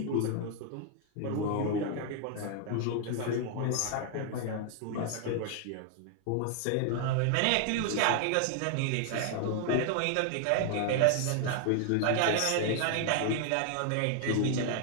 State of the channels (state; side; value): different; both; correlation 0.00